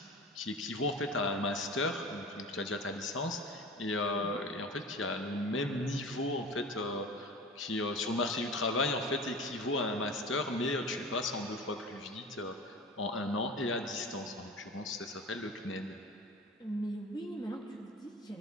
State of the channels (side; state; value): both; normal; correlation 0.35